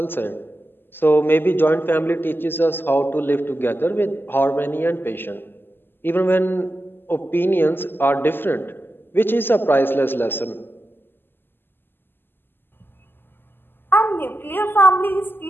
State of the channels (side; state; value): right; late; 0.099 ms